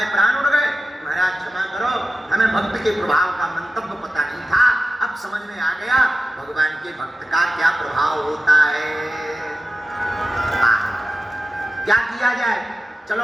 प्राण उड़ गए। महाराज क्षमा करो, हमें भक्त के प्रभाव का मंतव्य पता नहीं था, अब समझ में आ गया भगवान के भक्त का क्या प्रभाव होता है। क्या किया जाए, चलो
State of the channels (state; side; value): normal; both; correlation 0.94